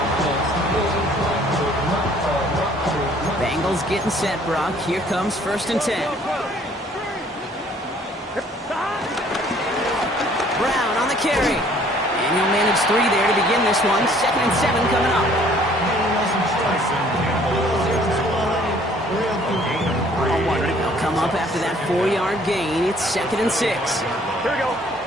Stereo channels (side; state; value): both; normal; correlation 0.58